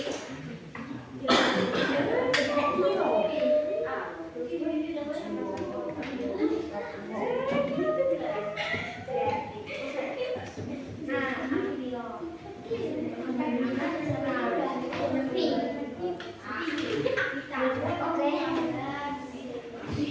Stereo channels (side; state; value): both; identical; correlation 1.00